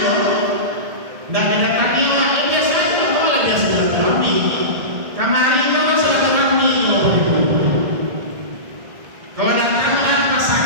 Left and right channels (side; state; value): left; late; 2.2 ms